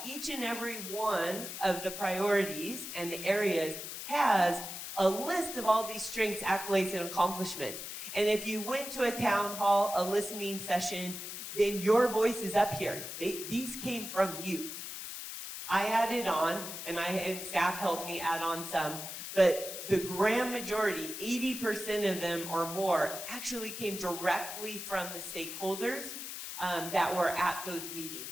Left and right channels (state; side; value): noise; left; hiss, 8 dB below the sound